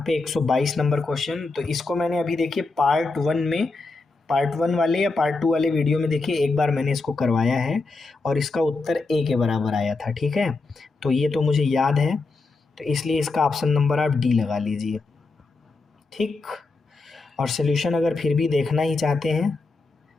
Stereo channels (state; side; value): quieter; right; 3.7 dB